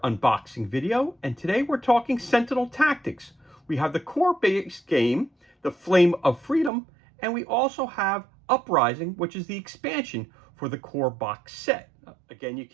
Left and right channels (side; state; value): left; drops out; at 6.7 s